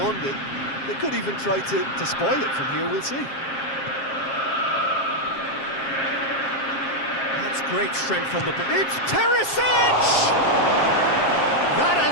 it. They could even try to spoil it from here, we'll see. That's great strength on the ball. It's Perisic! That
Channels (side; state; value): right; late; 7.4 ms